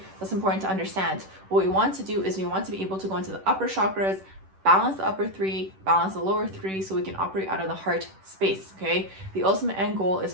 That's important to understand. What we want to do is we want to be able to go into the upper chakras, balance the upper three, balance the lower three, so we can operate out of the heart space, okay? The ultimate end goal is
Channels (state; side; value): late; left; 10 ms